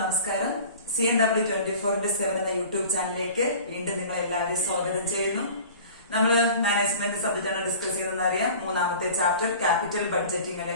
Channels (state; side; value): inverted; both; correlation -0.43